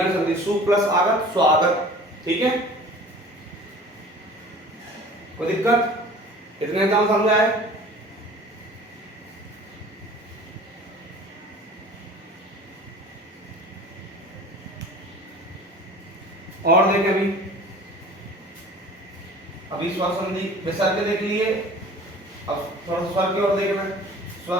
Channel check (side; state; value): both; normal; correlation 0.44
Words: संधि, सु प्लस आगत, स्वागत, ठीक है। कोई दिक्कत, इतने एग्जाम समझ आए। और देखें, अभी स्वर संधि विसर्ग के देख लिए, अब थोड़ा स्वर की ओर देखना है, स्वर